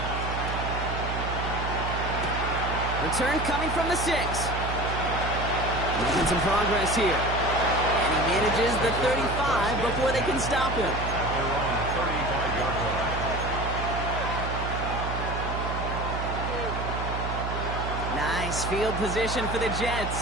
Return coming from the 6. Making some progress here. And he manages the 35 before they can stop him. At their own 35-yard line. Nice field position for the Jets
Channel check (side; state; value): right; noise; hum, 4 dB below the sound